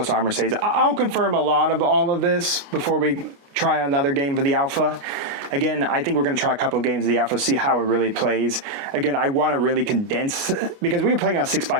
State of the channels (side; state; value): left; late; 29 ms